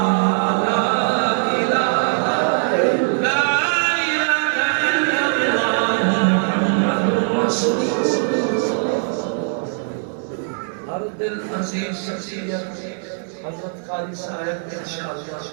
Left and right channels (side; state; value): left; silent; 65 dB below the other